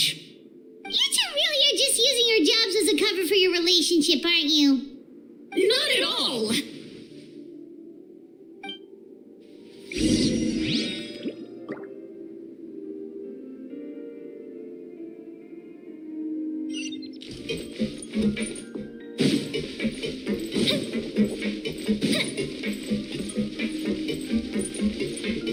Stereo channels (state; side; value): identical; both; correlation 1.00